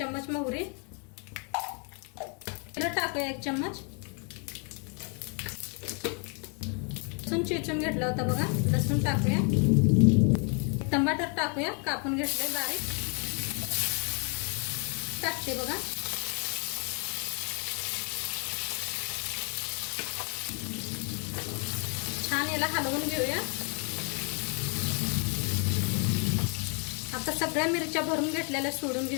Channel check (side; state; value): right; quieter; 38.6 dB